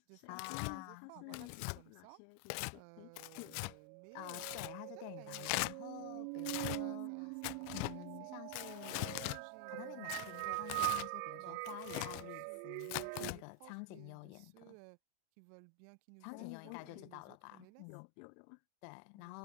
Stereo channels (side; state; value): both; different; correlation 0.00